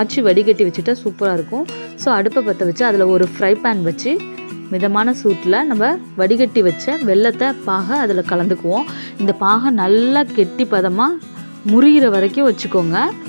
வடிகட்டி வச்சுட்டா சூப்பராக இருக்கும். ஸோ அடுப்பை பற்ற வச்சு அதில் ஒரு ஃப்ரை பேன் வச்சு மிதமான சூட்டில் நம்ம வடிகட்டி வச்ச வெல்லத்தை பாகை அதில் கலந்துக்குவோம். இந்த பாகை நல்லா கெட்டி பதமாக முறிகிற வரைக்கும் வச்சுக்கோங்க.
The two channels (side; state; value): both; inverted; correlation -1.00